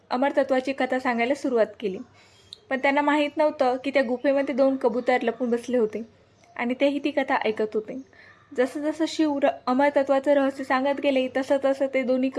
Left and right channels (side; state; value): both; identical; correlation 1.00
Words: अमरतत्वाची कथा सांगायला सुरुवात केली. पण त्यांना माहीत नव्हतं की त्या गुफेमध्ये 2 कबूतर लपून बसले होते आणि तेही ती कथा ऐकत होते. जसं जसं शिव अमरतत्वाचं रहस्य सांगत गेले, तसं तसं ते दोन्ही